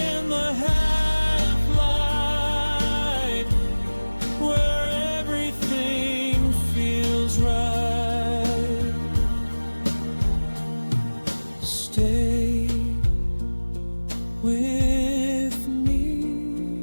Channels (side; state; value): both; inverted; correlation -1.00